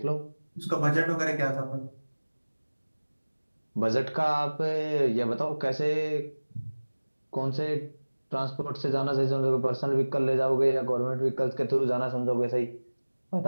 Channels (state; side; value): inverted; both; correlation -1.00